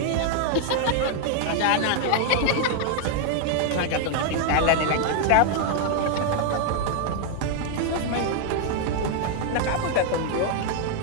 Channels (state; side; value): different; both; correlation 0.00